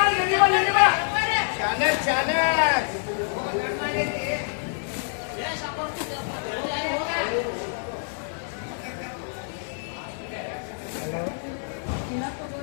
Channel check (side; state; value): right; silent; 56 dB below the other